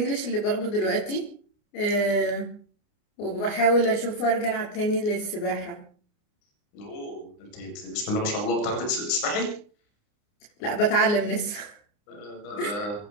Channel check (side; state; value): right; late; 29 ms